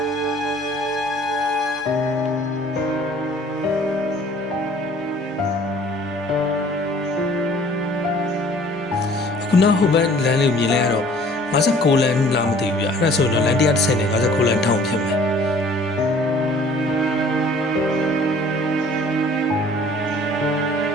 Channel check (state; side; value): normal; both; correlation 0.53